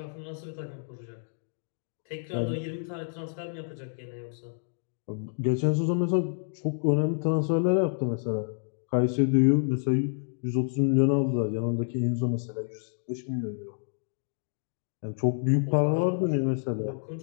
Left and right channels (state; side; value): silent; right; digital silence